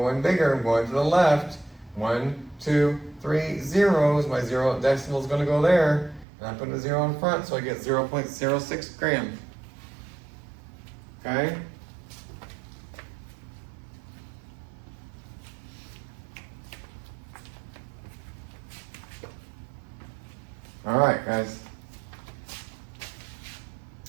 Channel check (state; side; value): drops out; left; at 6.2 s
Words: bigger. I'm going to the left. 1, 2, 3 zeros. My zero decimal is going to go there. And I put a 0 in front, so I get 0.06 grams. Okay? All right, guys.